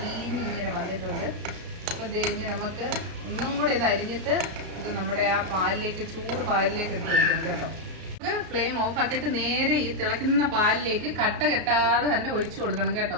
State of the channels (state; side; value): late; left; 33 ms